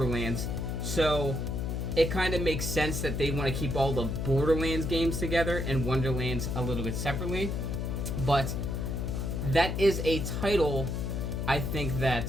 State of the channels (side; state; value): left; noise; hum, 2 dB below the sound